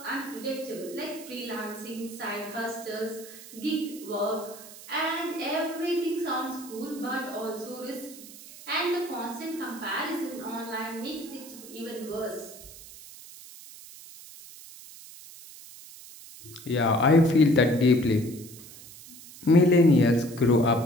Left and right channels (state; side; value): noise; right; hiss, 17 dB below the sound